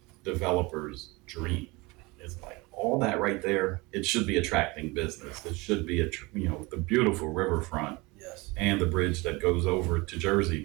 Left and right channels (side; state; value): left; quieter; 24.3 dB